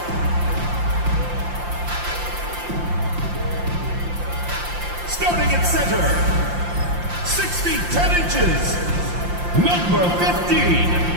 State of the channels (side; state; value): left; late; 5.7 ms